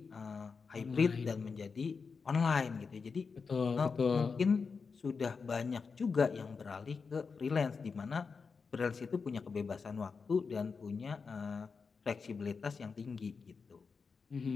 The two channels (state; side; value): quieter; right; 5.1 dB